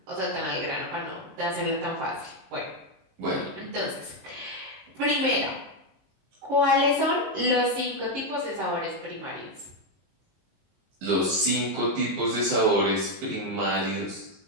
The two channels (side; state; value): left; late; 22 ms